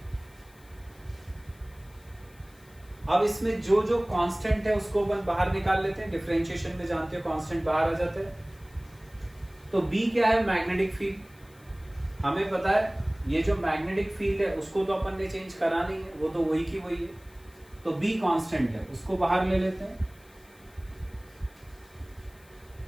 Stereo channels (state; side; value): noise; left; hiss, 28 dB below the sound